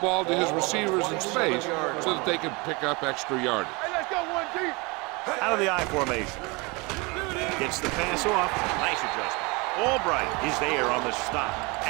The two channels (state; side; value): quieter; left; 27.1 dB